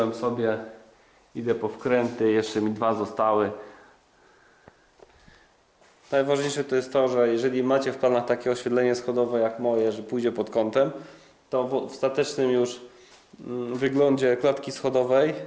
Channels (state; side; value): identical; both; correlation 1.00